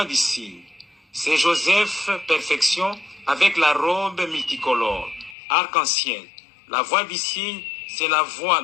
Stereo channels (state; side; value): drops out; right; at 5.4 s